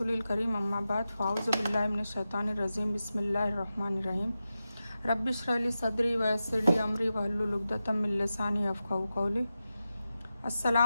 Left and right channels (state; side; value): inverted; both; correlation -0.92